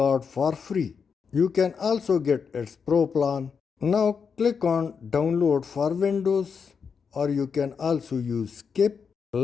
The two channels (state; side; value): quieter; right; 6.1 dB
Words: for free. You can also get its pro plan. Now click on download for Windows, or you can also use skip.